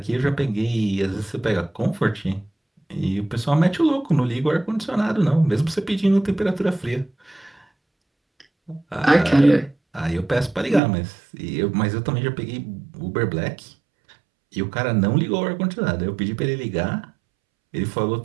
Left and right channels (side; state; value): left; drops out; at 10.8 s